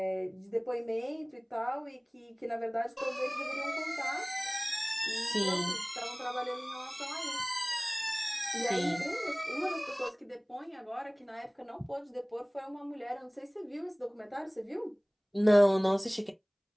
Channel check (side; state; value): both; identical; correlation 1.00